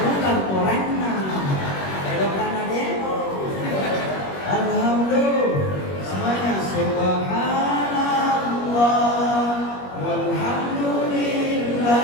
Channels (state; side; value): late; right; 21 ms